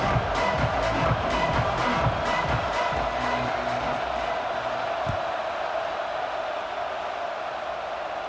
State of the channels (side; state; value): both; identical; correlation 1.00